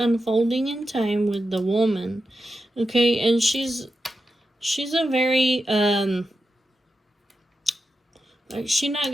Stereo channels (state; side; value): normal; both; correlation 0.89